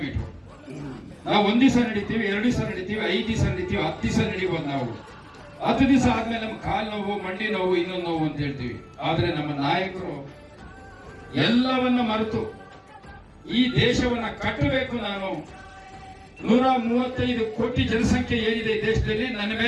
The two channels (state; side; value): identical; both; correlation 1.00